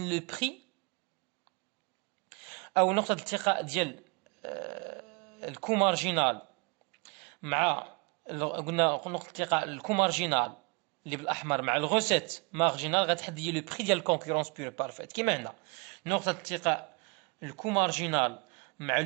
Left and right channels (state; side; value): quieter; left; 32.1 dB